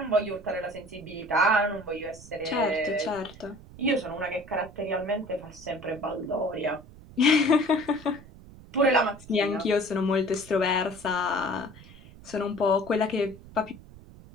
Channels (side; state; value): right; noise; rumble, 19 dB below the sound